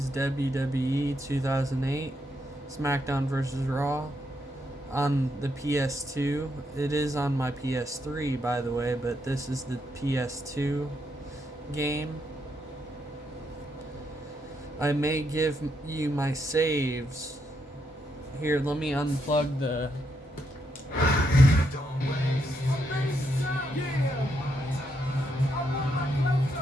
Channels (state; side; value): normal; both; correlation 0.79